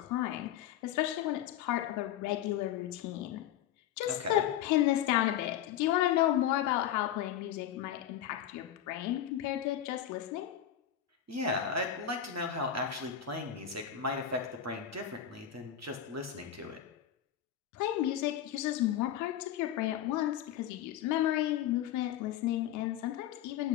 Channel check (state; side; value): quieter; right; 10.5 dB